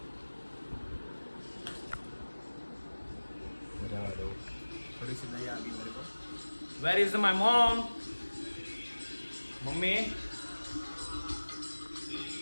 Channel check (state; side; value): inverted; both; correlation -1.00